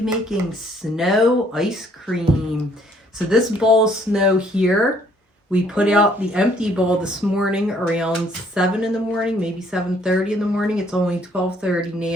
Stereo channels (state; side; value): normal; both; correlation 0.63